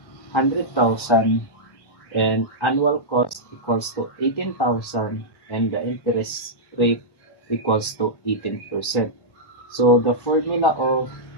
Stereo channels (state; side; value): late; right; 1.1 ms